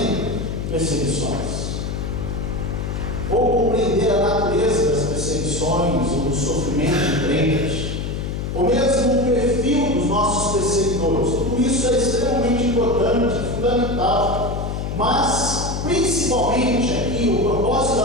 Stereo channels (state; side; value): noise; left; hum, 4 dB below the sound